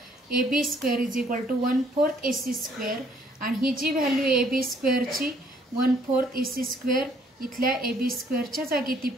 A B square is equal to 1/4 A C square आणि ही जी व्हॅल्यू ए बी स्क्वेअरची 1/4 ए सी स्क्वेअर इथल्या ए बी स्क्वेअरच्या जागी ती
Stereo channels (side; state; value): both; normal; correlation 0.64